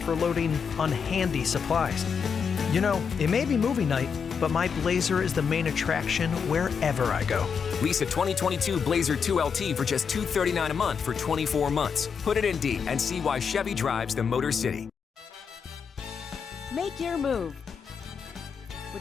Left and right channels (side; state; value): right; quieter; 6.4 dB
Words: for loading unhandy supplies. You know, it may be movie night, but my Blazer is the main attraction wherever I go. Lease a 2022 Blazer 2LT for just $239 a month for 24 months. Put it in D and see why Chevy drives the Motor City. Make your move